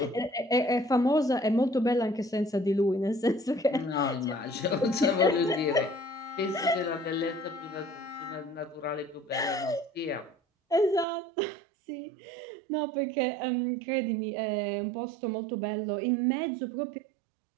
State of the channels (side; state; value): left; drops out; at 11.1 s